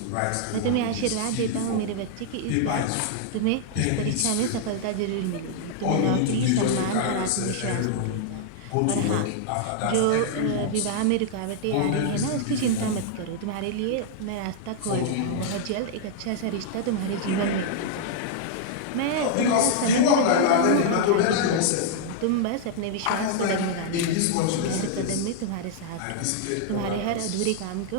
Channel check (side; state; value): both; different; correlation -0.01